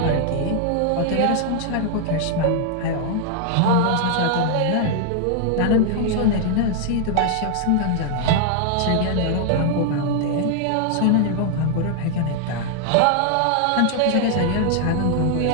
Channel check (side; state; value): both; different; correlation 0.00